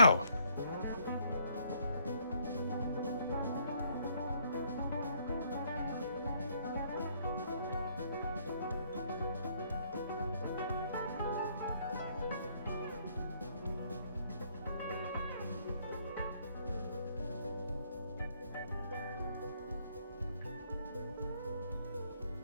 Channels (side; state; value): both; inverted; correlation -0.67